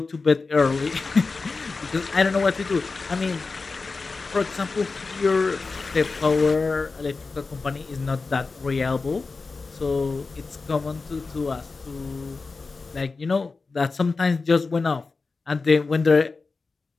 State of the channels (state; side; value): quieter; right; 4.1 dB